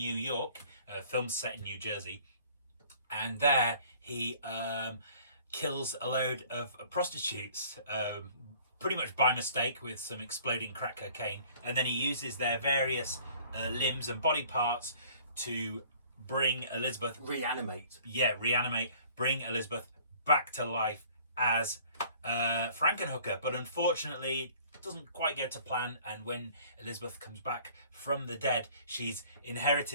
York, films set in New Jersey, and there he kills a load of prostitutes, pretty much by mistake with some exploding crack cocaine, and then he uses their various limbs and body parts to bring Elizabeth... Reanimate. Yeah, reanimate. Bring Elizabeth back to life as Frankenhooker, but unfortunately it doesn't quite go to plan, and when Elizabeth comes back from the dead, she's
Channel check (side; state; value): both; inverted; correlation -0.53